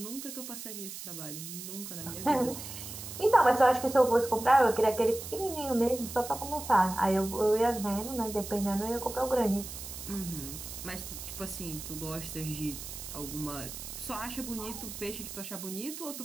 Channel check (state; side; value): noise; right; hiss, 10 dB below the sound